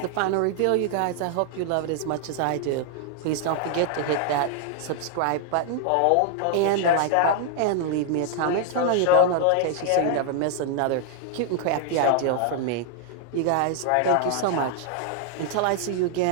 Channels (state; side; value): different; both; correlation -0.01